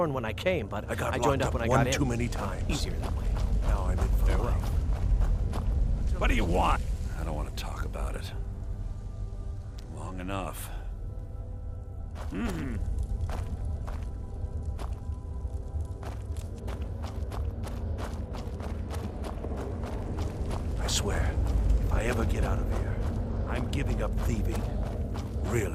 when I came, but I joined up when I got in. one too many times. Easier that way. Now I'm in for life. What do you want? I don't want to talk about it. Long enough. I swear, if I ever get out of here, I'm giving up thieving.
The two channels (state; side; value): identical; both; correlation 1.00